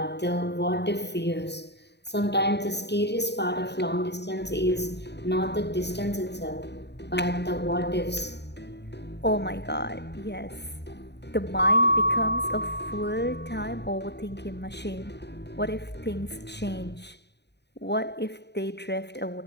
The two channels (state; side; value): late; right; 0.50 ms